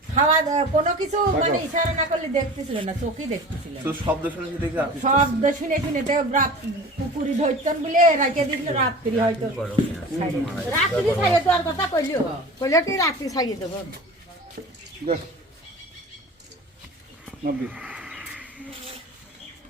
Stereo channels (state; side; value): normal; both; correlation 0.38